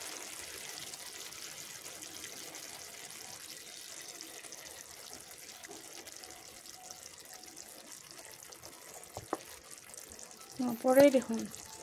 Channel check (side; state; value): both; identical; correlation 1.00